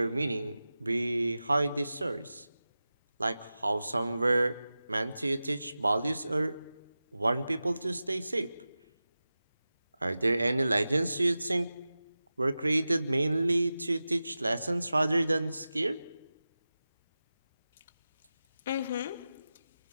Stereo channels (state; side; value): inverted; both; correlation -0.95